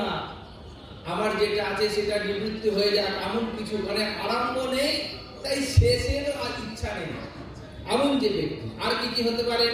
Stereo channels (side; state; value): both; identical; correlation 1.00